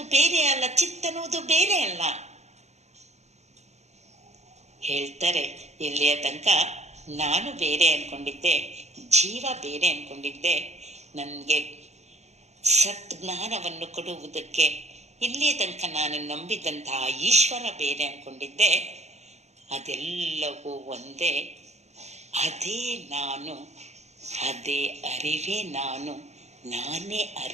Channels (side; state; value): left; late; 0.32 ms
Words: ಬೇರೆ ಅಲ್ಲ, ಚಿತ್ತನ್ನೋದು ಬೇರೆ ಅಲ್ಲ. ಹೇಳ್ತಾರೆ, ಇಲ್ಲಿಯ ತನಕ ನಾನು ಬೇರೆ ಅನ್ಕೊಂಡಿದ್ದೆ, ಜೀವ ಬೇರೆ ಅನ್ಕೊಂಡಿದ್ದೆ. ನನಗೆ ಸತ್ಜ್ಞಾನವನ್ನು ಕೊಡುವುದಕ್ಕೆ ಇಲ್ಲಿಯ ತನಕ ನಾನು ನಂಬಿದಂತಹ ಈಶ್ವರ ಬೇರೆ ಅನ್ಕೊಂಡಿದ್ದೆ. ಅದೆಲ್ಲವೂ ಒಂದೇ. ಅದೇ ನಾನು, ಅದೇ ಅರಿವೇ ನಾನು, ನಾನೇ